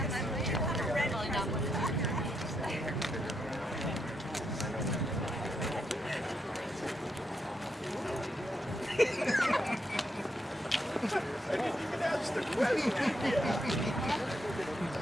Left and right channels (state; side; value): normal; both; correlation 0.80